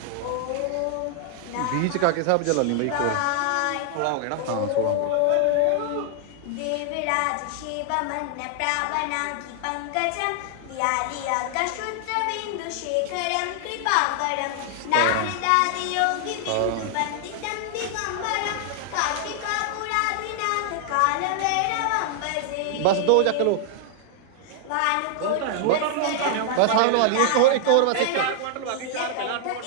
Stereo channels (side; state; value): both; different; correlation -0.01